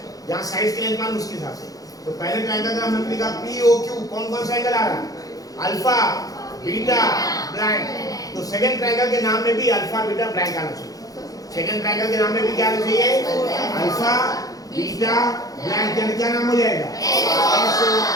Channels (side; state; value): right; late; 0.17 ms